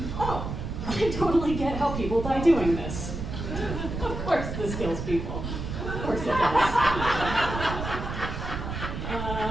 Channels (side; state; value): right; noise; rumble, 5 dB below the sound